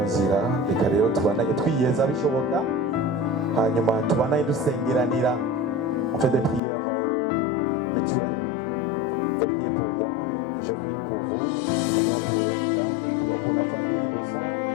nzira reka rero tubandanye twiyeza bishoboka hanyuma tubandanye dusengeranira on fait des prières mutuelles. Vous priez pour moi, je prie pour vous, nous prions pour Erika, nous prions pour la famille d'Osson,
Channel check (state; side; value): drops out; right; at 6.6 s